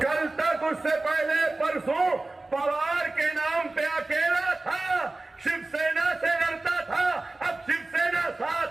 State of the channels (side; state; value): left; quieter; 3.0 dB